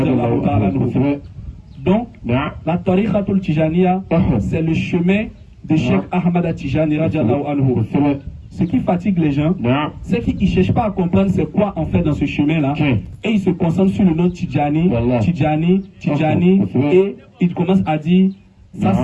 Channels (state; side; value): identical; both; correlation 1.00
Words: Donc, la Tariqatul Tijaniya, c'est le chemin de Cheikh Ahmad Tijani. Ce qui fatigue les gens, c'est qu'ils ne cherchent pas à comprendre c'est quoi en fait dans ce chemin-là. Et ils se concentrent sur le nom Tijani, Tijani, Tijani, et ils commencent à dire Ça,